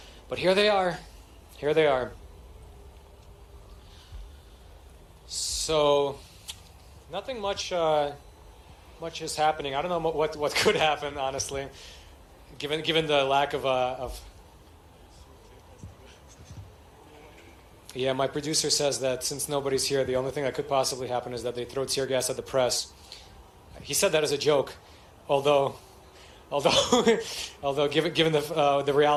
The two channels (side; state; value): both; identical; correlation 1.00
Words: here they are. Here they are. So nothing much is happening. I don't know what could happen, honestly, given the lack of. Yeah, my producer says that since nobody's here, the only thing that could possibly happen is that they throw tear gas at the press. He said that as a joke, although given the